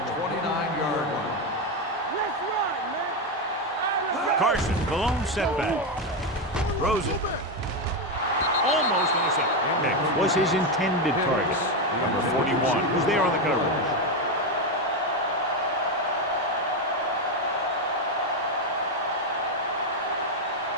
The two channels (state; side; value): normal; both; correlation 0.09